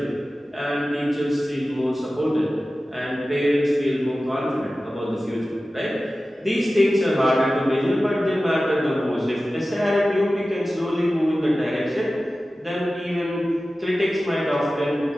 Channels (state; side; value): normal; both; correlation 0.95